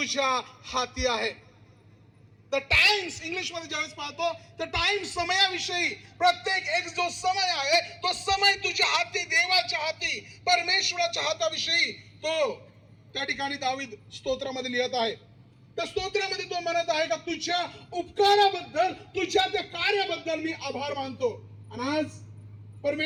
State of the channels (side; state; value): both; identical; correlation 1.00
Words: हाती आहे. द टाइम्स इंग्लिश मध्ये ज्यावेळेस पाहतो तर टाइम्स समयाविषयी, प्रत्येक एक जो समय आहे तो समय तुझ्या हाती, देवाच्या हाती, परमेश्वराच्या हाताविषयी तो त्या ठिकाणी दावीद स्तोत्रामध्ये लिहित आहे. त्या स्तोत्रामध्ये तो म्हणत आहे का तुझ्या उपकाराबद्दल, तुझ्या त्या कार्याबद्दल मी आभार मानतो. आणि आज